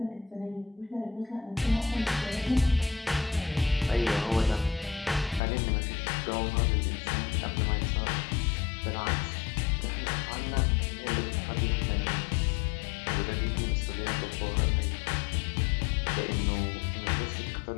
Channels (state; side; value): drops out; right; at 5.4 s